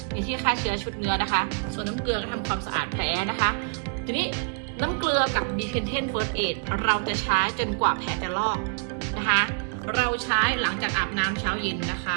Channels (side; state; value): left; quieter; 38.8 dB